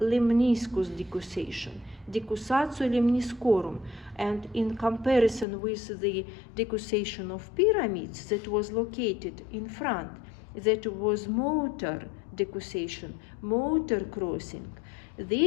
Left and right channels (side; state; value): right; drops out; at 5.5 s